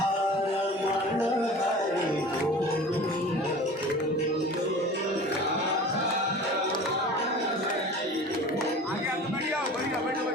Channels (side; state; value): both; normal; correlation 0.40